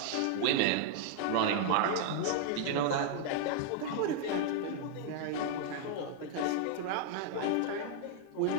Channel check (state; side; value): different; both; correlation 0.00